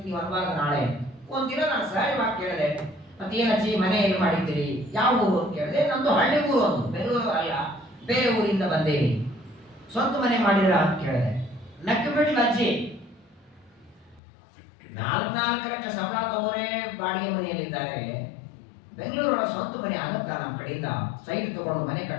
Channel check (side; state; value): right; drops out; at 14.2 s